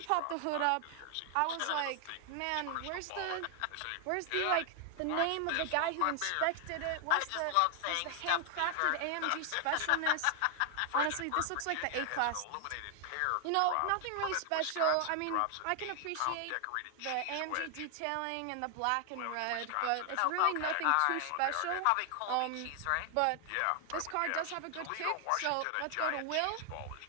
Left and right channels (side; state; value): both; different; correlation 0.00